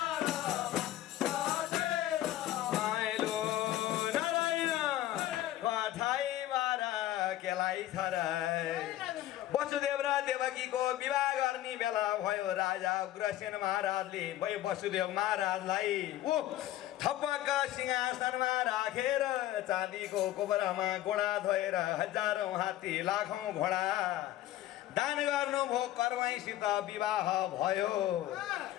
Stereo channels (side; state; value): right; quieter; 14.2 dB